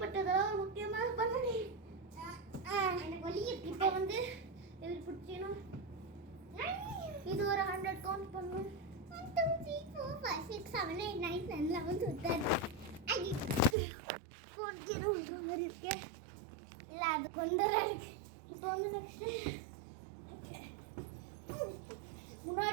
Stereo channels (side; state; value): left; drops out; at 13.8 s